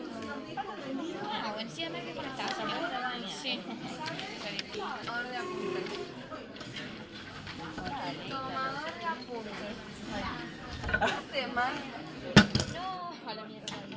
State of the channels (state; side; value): identical; both; correlation 1.00